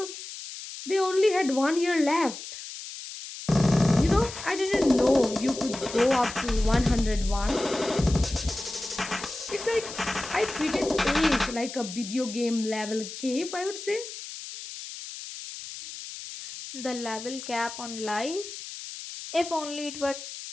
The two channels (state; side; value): noise; left; hiss, 11 dB below the sound